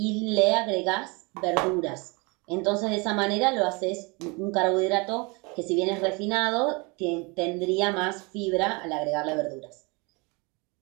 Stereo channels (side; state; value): left; quieter; 28.5 dB